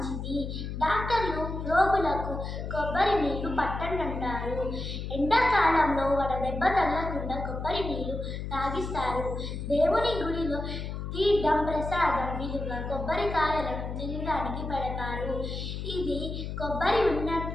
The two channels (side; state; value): left; noise; hum, 5 dB below the sound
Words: డాక్టర్లు రోగులకు కొబ్బరి నీళ్లు పట్టండి అంటారు. ఎండాకాలంలో వడదెబ్బ తగలకుండా కొబ్బరి నీళ్లు తాగిస్తారు. దేవుని గుడిలో తీర్థం ప్రసాదం విలువ కొబ్బరికాయలను తినడానికి పెడతారు. ఇది కొబ్బరి